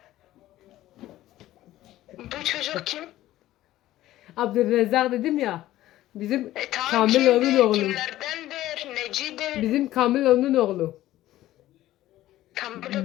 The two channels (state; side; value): quieter; right; 14.8 dB